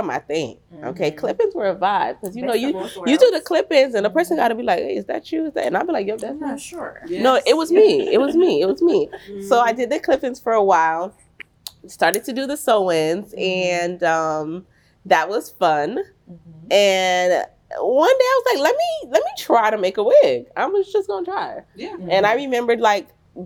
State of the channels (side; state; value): both; identical; correlation 1.00